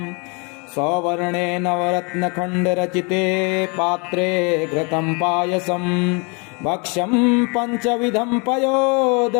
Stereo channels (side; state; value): right; quieter; 32.4 dB